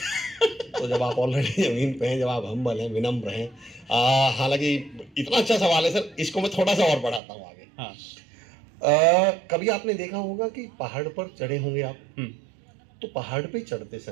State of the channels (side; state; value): left; drops out; at 7.2 s